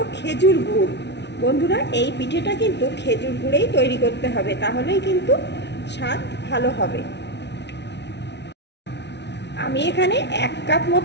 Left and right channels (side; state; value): right; late; 0.50 ms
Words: खेजुर गुड़। बंधुरा এই পিঠেটা কিন্তু খেজুর গুড়েই তৈরি করতে হবে, তাহলেই কিন্তু স্বাদ ভালো হবে। আমি এখানে 1 কাপ